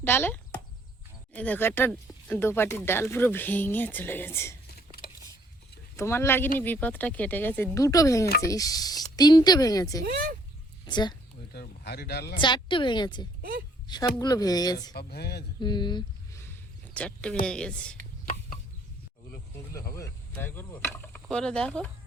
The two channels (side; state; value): both; normal; correlation 0.64